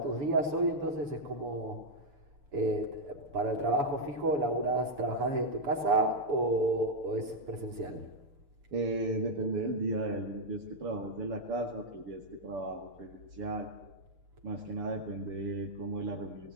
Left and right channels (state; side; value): late; left; 7.0 ms